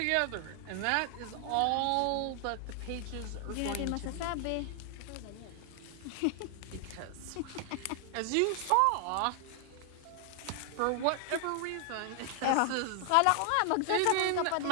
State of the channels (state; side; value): different; both; correlation 0.00